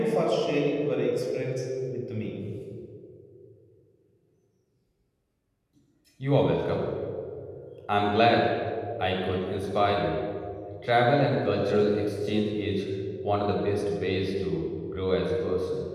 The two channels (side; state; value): both; identical; correlation 1.00